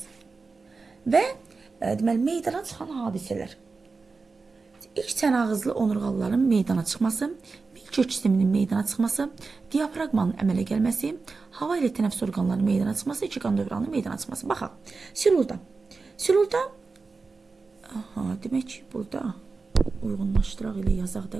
və deməli meydana çıxan hadisələr. İlk çənağızlı onurğalıların meydana çıxması, milkök sisteminin meydana çıxması, diafraqmanın əmələ gəlməsi, hava ilə tənəffüs orqanlarının meydana çıxması, iki qan dövranının meydana çıxması. Baxaq, Silurda, demək ki, burada uyğunlaşdıraq ilə yazaq da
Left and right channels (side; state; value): left; quieter; 4.2 dB